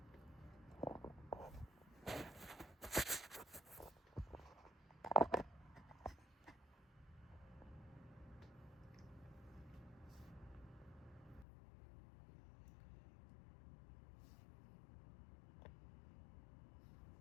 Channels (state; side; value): drops out; right; at 11.5 s